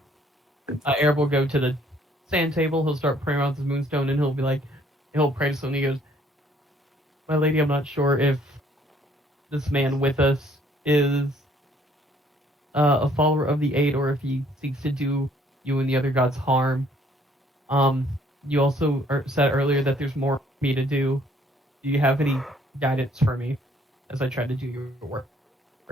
Arab will go to the sand table, he'll start praying around the moonstone, and he'll pray to something. He goes, my lady, I'm not sure if this man with us is a follower of the Eight or if he seeks to do you and the other gods harm. You also said earlier that there's more for me to do. Do you have any guidance for me as I try to do your work?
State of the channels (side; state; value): both; normal; correlation 0.62